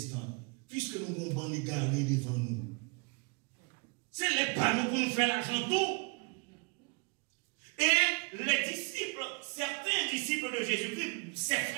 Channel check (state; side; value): quieter; left; 31.9 dB